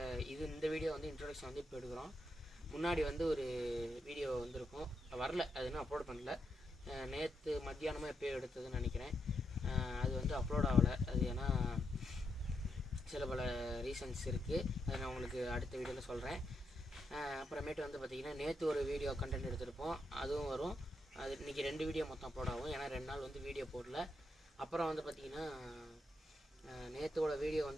இந்த வீடியோ வந்து இன்ட்ரோடக்ஷன் வந்து இப்போ எடுக்கிறோம். முன்னாடி வந்து ஒரு வீடியோ வந்துருக்கும், வரல, அது இன்னும் அப்லோட் பண்ணல. நேற்று மத்தியானமாக எப்போயோ எடுத்ததுன்னு நினைக்கிறேன். அது வந்து அப்லோட் ஆகலை. அது ஏன்னா சில பல ரீசன்ஸ் இருக்குது. அதை நான் உங்களுக்கு அடுத்த வீடியோவில் சொல்கிறேன். அப்புறமேட்டு வந்து பார்த்திங்கன்னா, நேற்று ஒரு வீடியோ கண்டென்ட் எடுத்திருப்போம், அதுவும் வரும். அது இன்றைக்கி 2 வீடியோ மொத்தம் அப்லோட் ஆகும், ஏன்னா 2 நாள் வந்து வீடியோ போடல. அப்புறம் வந்து பார்த்திங்கன்னா, நேற்றோட வீடியோ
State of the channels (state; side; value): normal; both; correlation 0.82